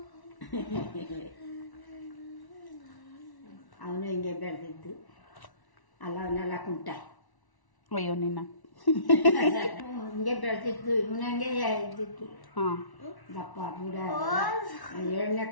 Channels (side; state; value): right; late; 1.1 ms